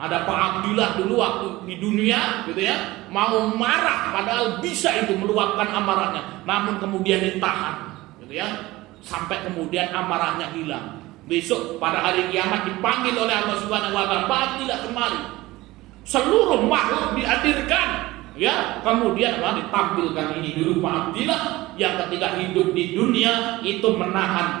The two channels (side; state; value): left; quieter; 18.9 dB